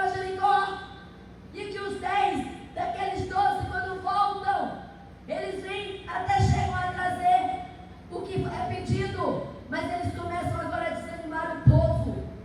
Jericó, e que os 10 daqueles 12, quando voltam, eles vêm, até chegam a trazer o que é pedido, mas eles começam agora a desanimar o povo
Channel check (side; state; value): both; identical; correlation 1.00